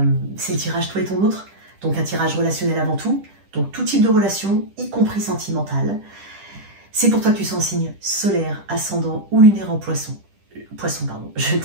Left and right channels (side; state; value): left; late; 10 ms